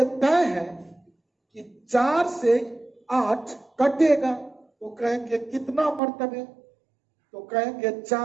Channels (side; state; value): left; drops out; at 6.0 s